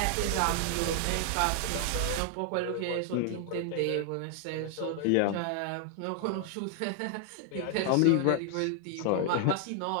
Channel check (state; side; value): different; both; correlation 0.00